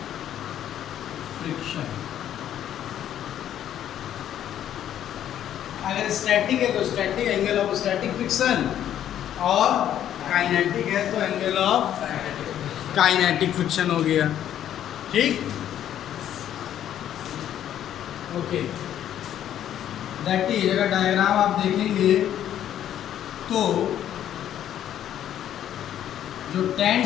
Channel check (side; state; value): right; quieter; 10.8 dB